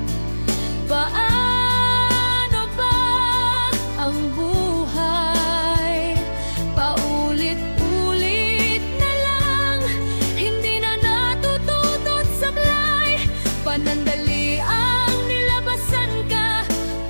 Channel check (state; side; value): inverted; both; correlation -1.00